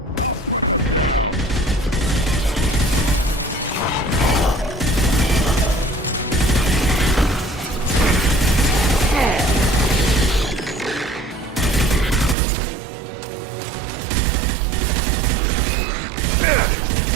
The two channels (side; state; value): left; drops out; at 12.4 s